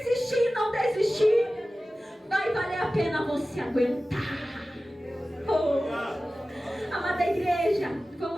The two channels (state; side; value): normal; both; correlation 0.96